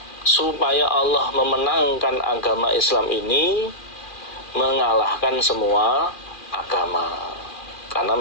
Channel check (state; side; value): late; right; 2.4 ms